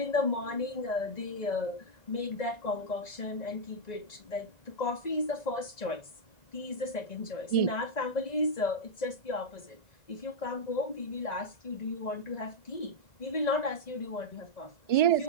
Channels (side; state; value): right; late; 1.9 ms